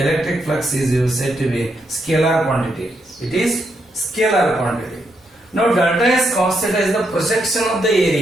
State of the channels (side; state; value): both; normal; correlation 0.79